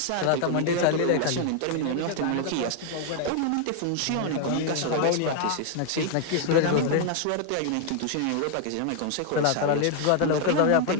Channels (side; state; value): both; different; correlation 0.00